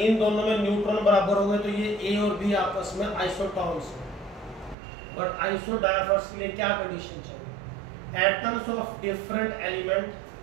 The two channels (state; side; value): drops out; left; at 4.8 s